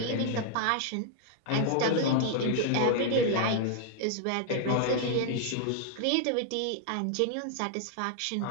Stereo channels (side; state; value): both; different; correlation 0.00